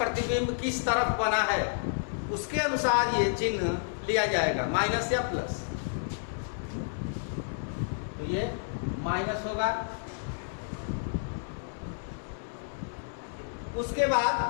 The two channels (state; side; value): silent; right; digital silence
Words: किस तरफ बना है, उसके अनुसार ये चिन्ह लिया जाएगा, माइनस या प्लस। तो ये माइनस होगा। उसके बाद